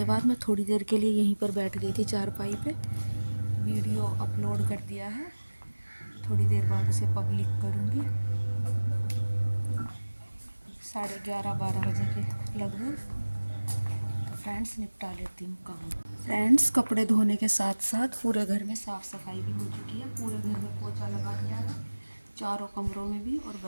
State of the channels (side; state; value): both; inverted; correlation -1.00